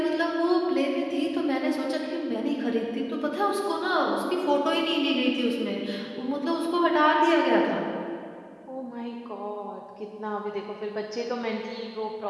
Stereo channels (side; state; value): both; identical; correlation 1.00